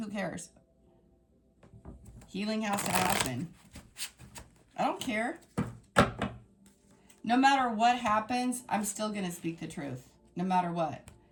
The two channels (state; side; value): identical; both; correlation 1.00